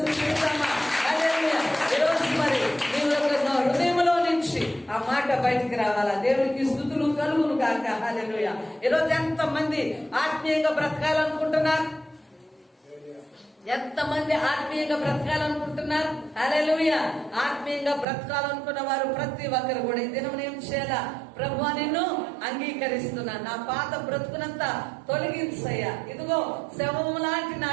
స్తుతిద్దామా? హల్లెలూయా. ఈరోజు మరి నీ యొక్క హృదయంలో నుంచి ఆ మాట బయటికి రావాలా? దేవునికి స్తుతులు కలుగును గాక. హల్లెలూయా. ఈరోజు ఎంతమంది ఆత్మీయంగా బ్రతకాలనుకుంటున్నారు? ఎంతమంది ఆత్మీయంగా బ్రతకాలనుకుంటున్నారు? హల్లెలూయా. ఆత్మీయంగా బ్రతకాలనుకున్న వారు ప్రతి ఒక్కరు కూడా ఈ దినం ఏం చేయాలా? ప్రభువా, నిన్ను అంగీకరిస్తున్నా, నా పాత బ్రతుకునంతా తొలగించయ్యా. ఇదిగో శవము లాంటి నా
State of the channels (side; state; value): left; drops out; at 18.1 s